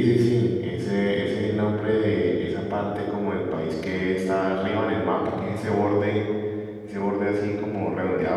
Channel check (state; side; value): identical; both; correlation 1.00